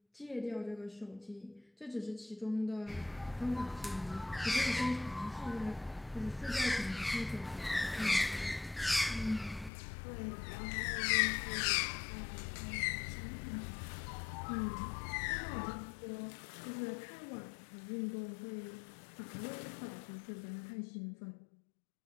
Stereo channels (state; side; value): drops out; right; at 9.7 s